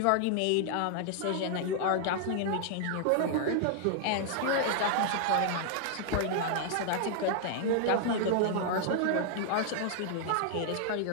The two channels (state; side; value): different; both; correlation -0.01